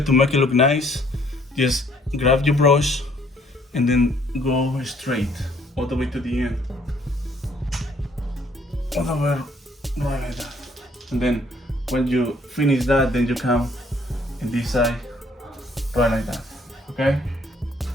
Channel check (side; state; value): both; normal; correlation 0.63